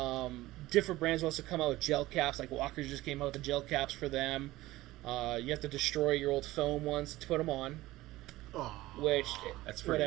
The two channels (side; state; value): left; quieter; 17.5 dB